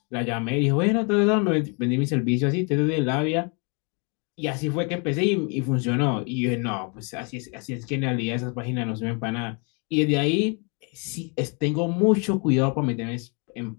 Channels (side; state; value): right; quieter; 35.1 dB